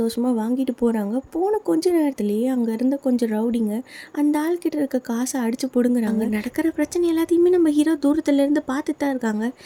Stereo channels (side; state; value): both; identical; correlation 1.00